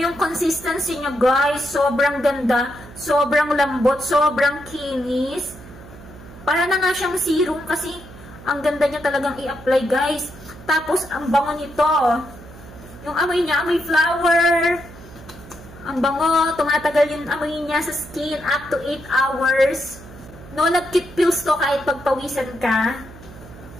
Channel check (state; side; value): noise; right; hum, 18 dB below the sound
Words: yung consistency niya guys. Sobrang ganda. Sobrang lambot. Sobrang kinis. Para na nga siyang serum kasi ang ganda niya talagang i-apply guys. Tapos, ang bango nito. Yung amoy niya, amoy flower. Ang bango. Tumatagal yung amoy niya sa skin up to 8 hours. No Love Kit pills to kahit pagpawisan ka.